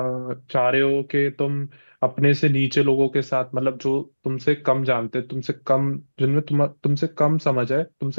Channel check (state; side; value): inverted; both; correlation -1.00